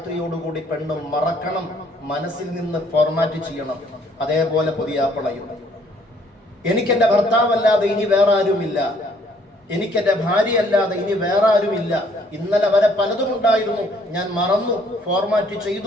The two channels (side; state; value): both; normal; correlation 0.64